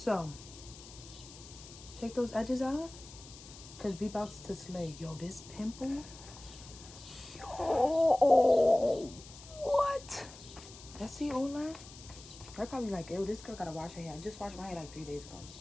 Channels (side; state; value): left; noise; hiss, 17 dB below the sound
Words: take those edges out. Because we about to slay. Yo, this pimple. Yo, what? Let's see, Ola. They're probably like, ew, this girl gotta wash her hair. I just washed my hair like 3 days ago.